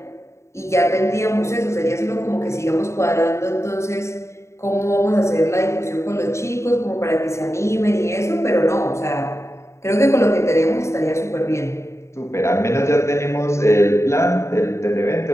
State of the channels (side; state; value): right; late; 0.14 ms